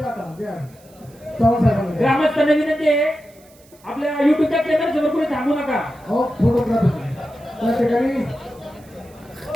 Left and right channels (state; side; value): noise; right; hiss, 28 dB below the sound